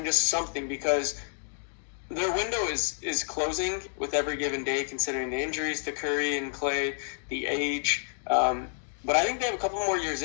just something, because their window is closing with every given day, considering the injuries to Curry and Clay, the age. But I think they have a couple more years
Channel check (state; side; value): silent; right; digital silence